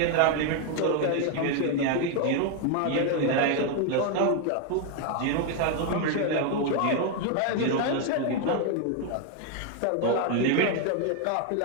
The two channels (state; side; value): different; both; correlation 0.01